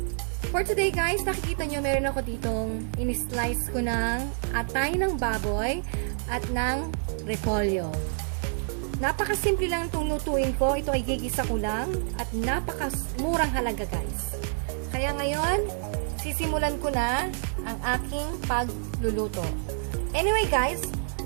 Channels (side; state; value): left; silent; digital silence